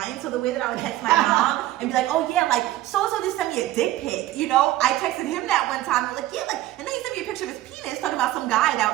So the way that I would text my mom and be like, oh yeah, like so-and-so just sent me a dick pic, you know? I texted him that one time. I was like, yeah, like, and then he sent me a picture of his penis talking about some guy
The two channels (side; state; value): left; quieter; 15.4 dB